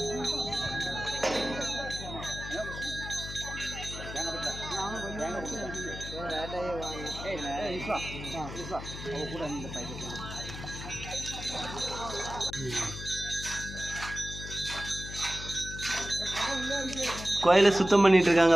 கோயிலை சுத்தம் பண்ணிட்டு இருக்காங்க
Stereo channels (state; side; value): noise; left; hum, 9 dB below the sound